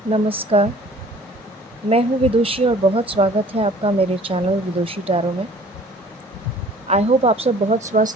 नमस्कार, मैं हूँ विदुषी और बहुत स्वागत है आपका मेरे चैनल विदुषी टैरो में। आई होप आप सब बहुत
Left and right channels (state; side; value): normal; both; correlation 0.51